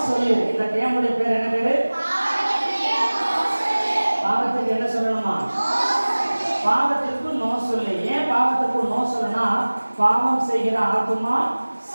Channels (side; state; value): both; inverted; correlation -1.00